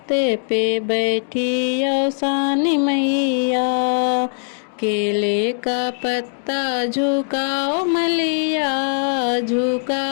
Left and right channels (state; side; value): silent; right; digital silence